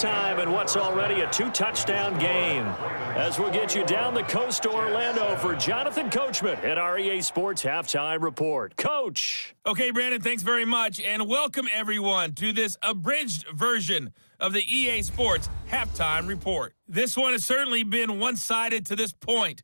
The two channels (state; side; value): inverted; both; correlation -1.00